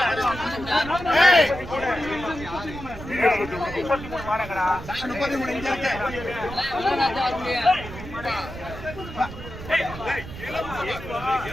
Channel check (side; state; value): right; noise; rumble, 12 dB below the sound